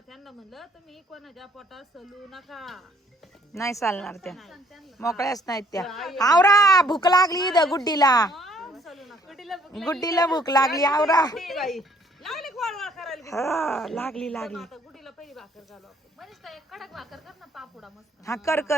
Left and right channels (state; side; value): normal; both; correlation 0.63